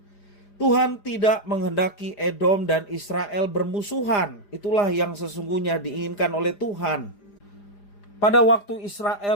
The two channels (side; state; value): right; late; 4.9 ms